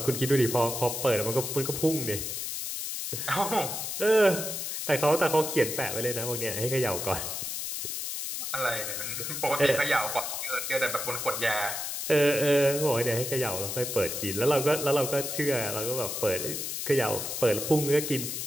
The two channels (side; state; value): left; noise; hiss, 4 dB below the sound